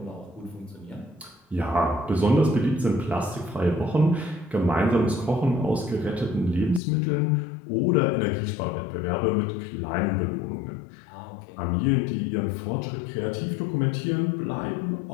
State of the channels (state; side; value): drops out; right; at 6.8 s